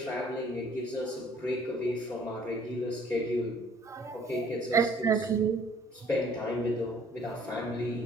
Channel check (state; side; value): normal; both; correlation 0.57